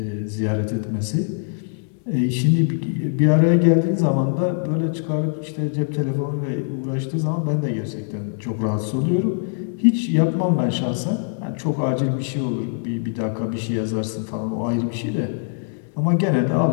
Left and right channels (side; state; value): right; silent; digital silence